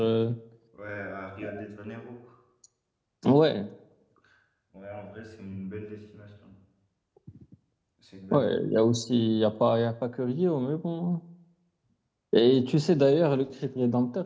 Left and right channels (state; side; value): identical; both; correlation 1.00